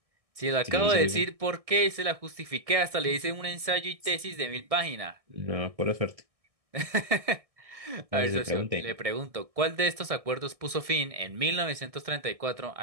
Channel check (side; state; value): left; late; 1.6 ms